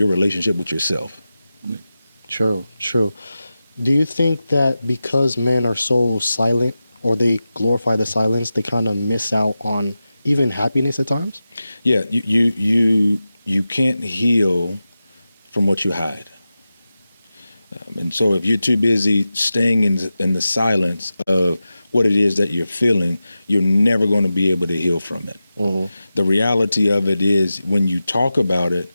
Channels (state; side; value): inverted; both; correlation -0.93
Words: relationship with yourself. True. Do you think that because men are so silent, or they glorify the silence, they kind of miss out on even happiness at times? Yeah, you can't heal from what you hide. And so if you're too busy staying in the silence of what it is that you're feeling, you're never going to be able to heal from it. The reality of it is when you talk about it,